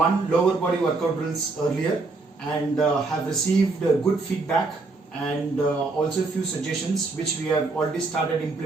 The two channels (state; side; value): quieter; left; 3.6 dB